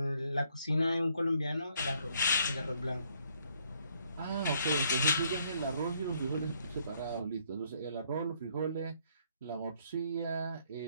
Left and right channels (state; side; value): inverted; both; correlation -0.68